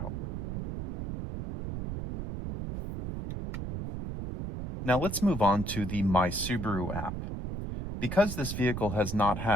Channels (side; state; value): right; noise; rumble, 5 dB below the sound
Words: Now let's move on to the My Subaru app. Because this vehicle has not